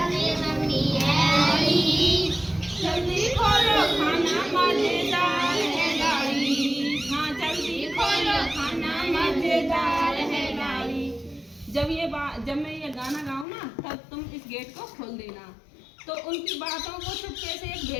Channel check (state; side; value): drops out; right; at 13.5 s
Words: मम्मी है आई। जल्दी खोलो खाना मजेदार है लाई। हाँ जल्दी खोलो खाना मजेदार है लाई। जब मैं ये गाना गाऊं ना तब तुम इस गेट को खोल देना। तो उनकी बातों को चुपके से एक